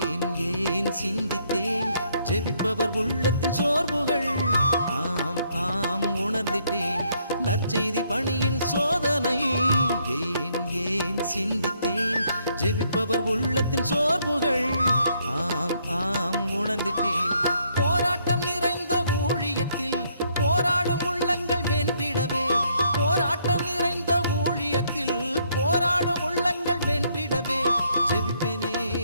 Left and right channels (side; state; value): both; inverted; correlation -0.70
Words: ஏன் சிந்தித்தேன். ஜெபிப்பவர் உள்ளத்தின் சோர்வுகள், ஆம் ஆம் உணர்ந்திட்டேன். நற்செய்தி பணியின் சோதனை ஏன் ஏன் சிந்தித்தேன். ஜெபிப்பவர் உள்ளத்தின் சோர்வுகள், ஆம் ஆம் உணர்ந்திட்டேன். போராட்டம் நிறைந்த ஊழியத்தில் போராடும் உள்ளங்கள் வென்றிடவே, போராட்டம் நிறைந்த ஊழியத்தில் போராடும் உள்ளங்கள் வென்றிடவே. ஜெபிப்பேனே